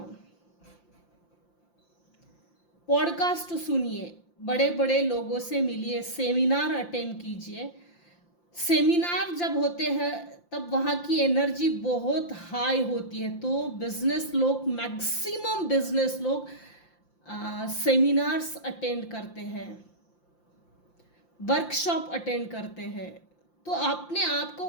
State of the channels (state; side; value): late; right; 5.8 ms